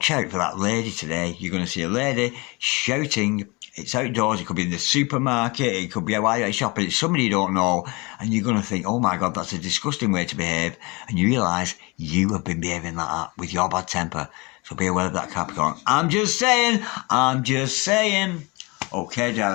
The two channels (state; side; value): quieter; right; 26.5 dB